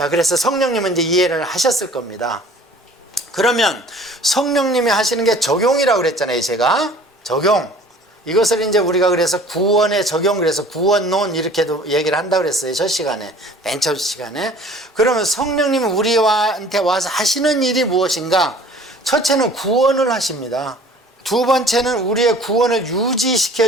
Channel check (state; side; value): normal; both; correlation 0.49